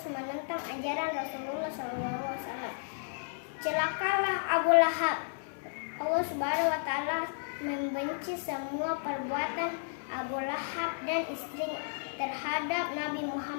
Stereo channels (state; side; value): silent; right; 55 dB below the other